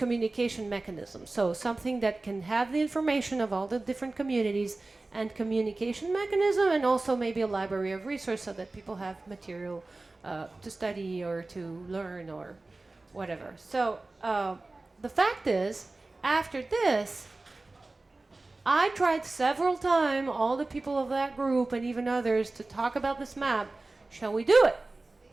mechanisms. So something that can have the information of all the different communities and communication mechanism, and also maybe a library of resources so that people have material to study or to learn or whatever. So the fact is, after this, I tried several times, all the people of that group and even others, to talk about this map. Shall we do it?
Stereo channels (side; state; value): left; quieter; 3.2 dB